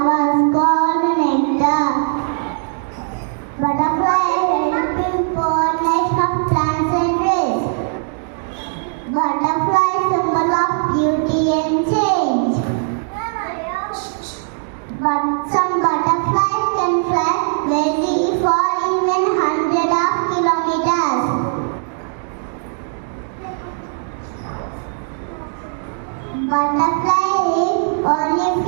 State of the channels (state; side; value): silent; left; 56 dB below the other